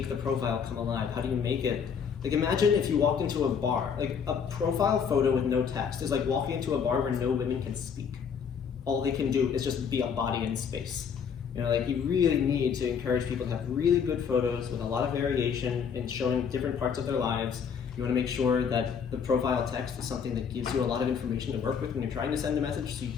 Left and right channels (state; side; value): quieter; right; 6.9 dB